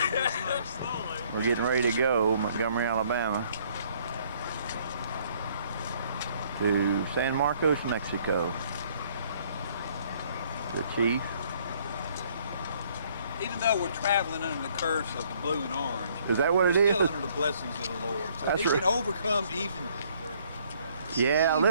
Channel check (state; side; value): inverted; both; correlation -0.63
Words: We're getting ready to go, Montgomery, Alabama, to San Marcos, Mexico. The chief. Even though we're traveling under the curse of the blue and orange, is that what it we're is? still under the blessings of the Lord. So That's he right. can overcome even. Yeah,